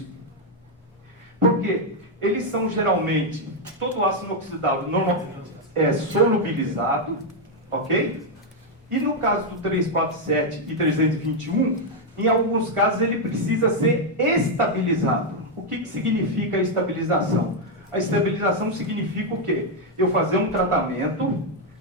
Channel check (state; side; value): normal; both; correlation 0.00